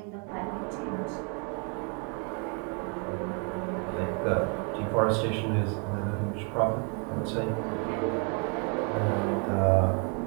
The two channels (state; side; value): quieter; left; 37.1 dB